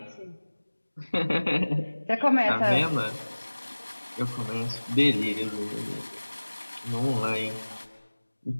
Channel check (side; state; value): both; inverted; correlation -1.00